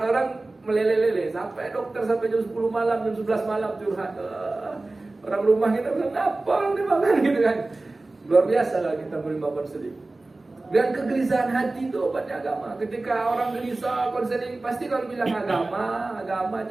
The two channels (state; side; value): quieter; left; 3.1 dB